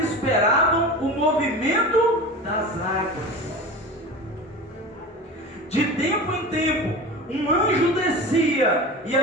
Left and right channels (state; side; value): normal; both; correlation 0.31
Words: o movimento das águas. De tempo em tempo, um anjo descia e